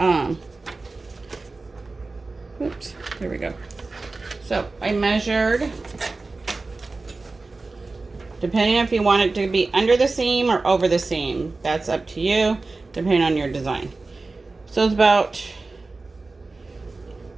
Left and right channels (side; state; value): left; quieter; 3.6 dB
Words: oops, there we go. So I measured, depending if you want it to be under the seam or over the seam. That's up to you, depending on your design. So it's about